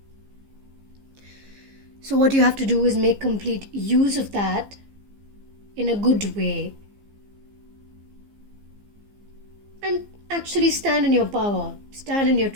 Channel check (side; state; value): left; late; 15 ms